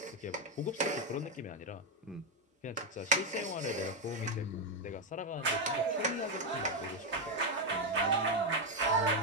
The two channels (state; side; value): normal; both; correlation 0.04